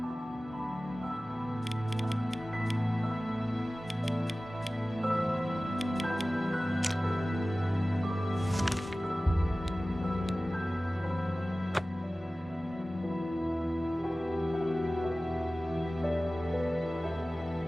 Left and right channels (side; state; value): both; normal; correlation 0.97